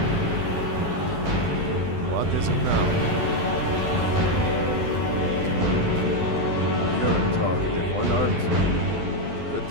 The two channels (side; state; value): left; late; 12 ms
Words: What is it now? You're a talkative one, aren't you? Good